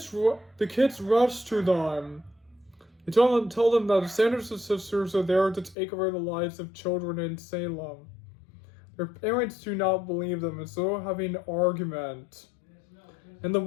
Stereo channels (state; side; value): drops out; right; at 5.8 s